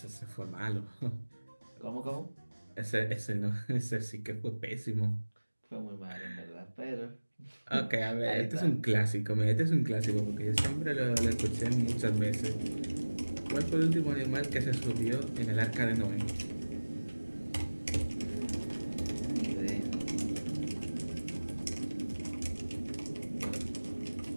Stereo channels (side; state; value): both; inverted; correlation -1.00